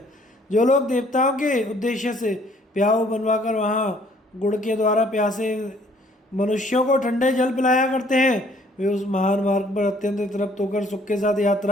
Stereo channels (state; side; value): normal; both; correlation 0.61